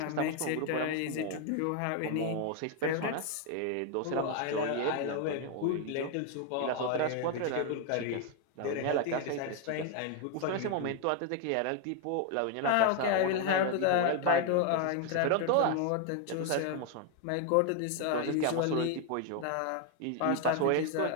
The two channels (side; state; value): both; different; correlation 0.00